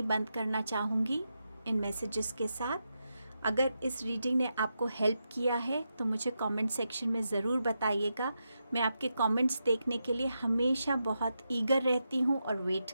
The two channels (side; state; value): both; inverted; correlation -0.86